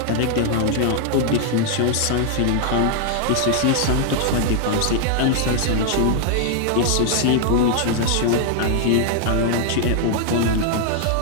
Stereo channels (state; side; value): different; both; correlation 0.00